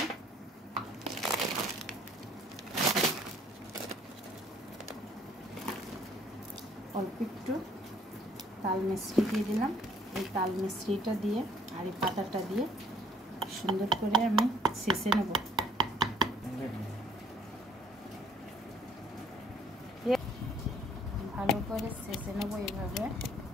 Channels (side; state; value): both; normal; correlation 0.61